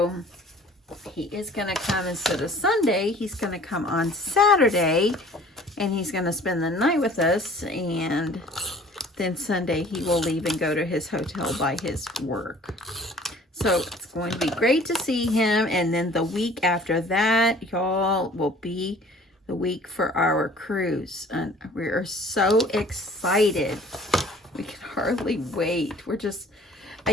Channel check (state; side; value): normal; both; correlation 0.51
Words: he is going to come instead of Sunday. He's going to come on Saturday, and he's going to spend the night with us. And then Sunday he will leave and go to his hotel by his work. So it's going to be great to see him. And then the week after that, y'all, will be the week for our cruise. And we are so excited. We can hardly wait.